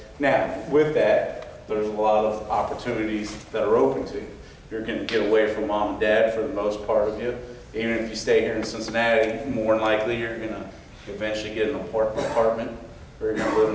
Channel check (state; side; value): identical; both; correlation 1.00